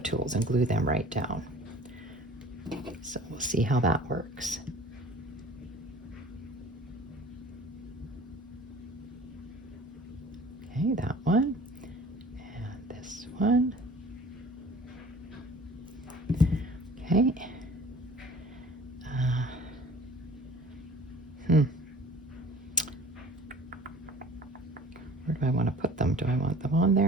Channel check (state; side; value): normal; both; correlation 0.46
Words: tools and glue them right down. So we'll see how that works. Okay, that one, and this one. Okay. Where do I want to put them? Do I want them on